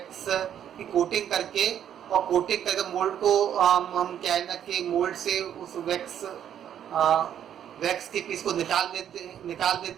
की कोटिंग करके और कोटिंग करके मोल्ड को हम क्या है ना कि मोल्ड से उस वैक्स के पीस को निकाल देते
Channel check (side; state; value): left; quieter; 9.8 dB